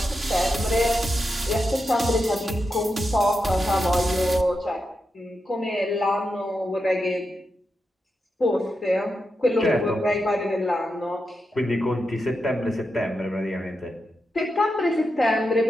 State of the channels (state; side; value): normal; both; correlation 0.87